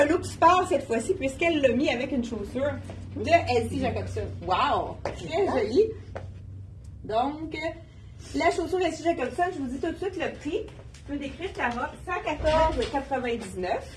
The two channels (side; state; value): both; identical; correlation 1.00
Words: look sport cette fois-ci, puisqu'elle l'a mis avec une chaussure de Elsie Jacobson. Wow! Très joli. Donc, la chaussure Elsie Jacobson, je vous dis tout de suite le prix. Je peux décrire la robe, 114,99